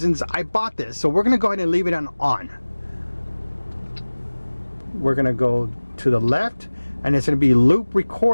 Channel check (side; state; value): both; inverted; correlation -1.00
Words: I bought this. So we're going to go ahead and leave it on. We're going to go to the left, and it's going to be loop